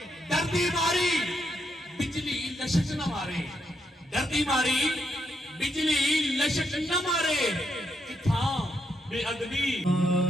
دردی ماری بجلی لشک نہ مارے. دردی ماری بجلی لشک نہ مارے. کتھاں بے ادبی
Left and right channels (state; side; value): normal; both; correlation 0.79